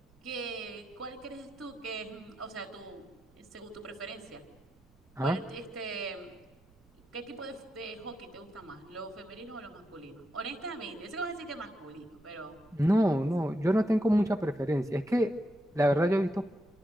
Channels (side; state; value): right; noise; rumble, 29 dB below the sound